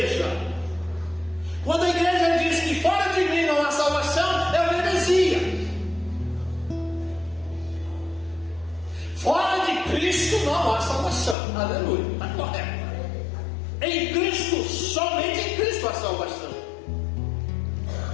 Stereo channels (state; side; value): drops out; right; at 11.4 s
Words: Quando a igreja diz que fora de mim não há salvação, é uma heresia. Fora de Cristo não há salvação. Aleluia, está correto. Em Cristo, somente em Cristo há salvação.